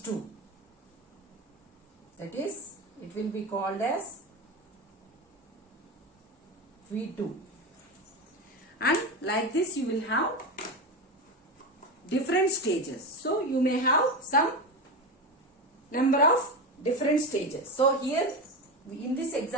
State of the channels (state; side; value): normal; both; correlation 0.19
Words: 2. That is, it will be called as V2. And like this you will have different stages. So you may have some number of different stages. So here in this